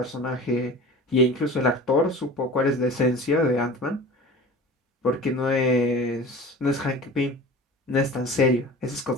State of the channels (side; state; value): both; normal; correlation 0.38